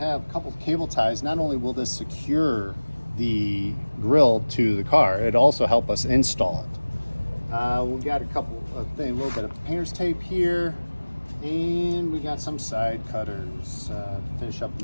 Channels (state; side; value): inverted; both; correlation -1.00